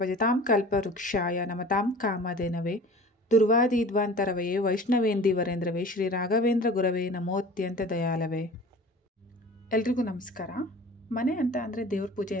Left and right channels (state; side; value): normal; both; correlation 0.41